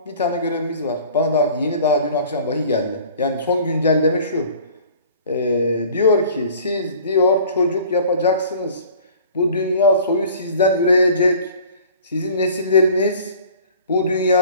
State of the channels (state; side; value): inverted; both; correlation -0.48